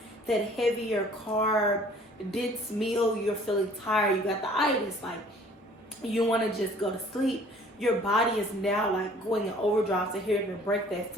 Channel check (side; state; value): both; normal; correlation 0.54